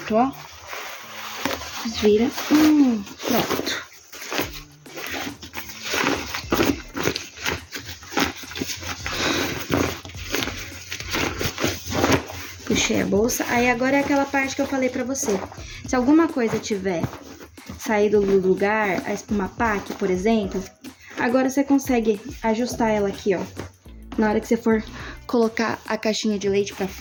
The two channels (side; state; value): both; identical; correlation 1.00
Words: ó. Desvira. Pronto. Puxei a bolsa. Aí agora é aquela parte que eu falei pra você. Se alguma coisa tiver saído do lugar, a espuma pack, por exemplo, agora você consegue ajustar ela aqui, ó. Na hora que você for colocar a caixinha de leite pra